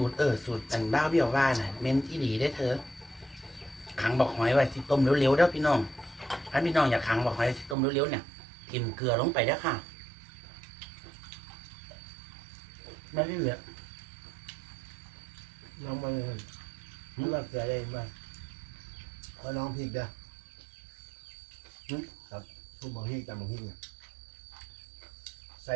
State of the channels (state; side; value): drops out; left; at 7.8 s